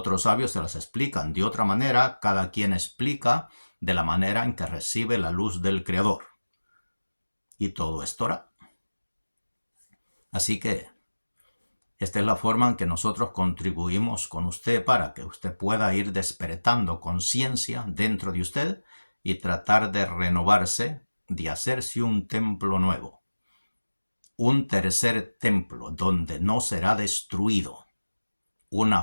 sabios se las explican de otra manera, cada quien explica de la manera en que recibe la luz del Creador. Y todo es Torah. Así que esta es la forma en que nosotros contribuimos con usted para que usted pueda ir despertando conciencia dentro de usted y tratar de renovarse, de hacerse un templo nuevo. Un tercer templo donde no será destruido. Una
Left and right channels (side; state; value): both; inverted; correlation -1.00